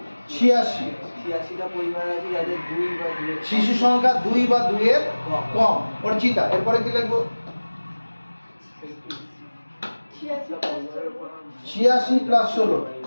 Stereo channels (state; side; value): inverted; both; correlation -1.00